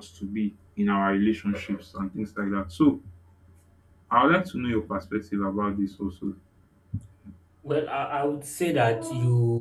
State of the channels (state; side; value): identical; both; correlation 1.00